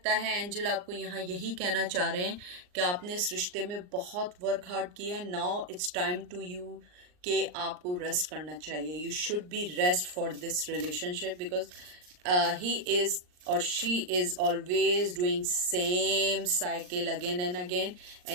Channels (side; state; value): left; late; 39 ms